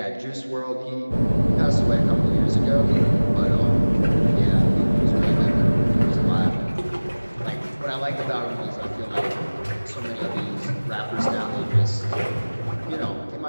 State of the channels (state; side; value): inverted; both; correlation -1.00